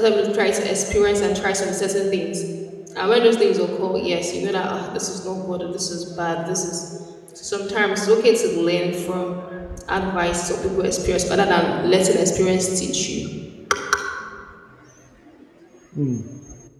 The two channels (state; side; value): identical; both; correlation 1.00